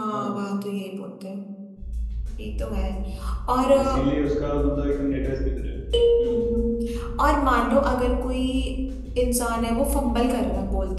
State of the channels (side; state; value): both; identical; correlation 1.00